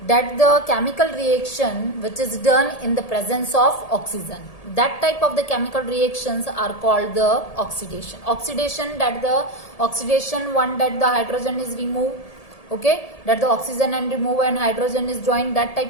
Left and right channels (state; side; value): late; right; 1.8 ms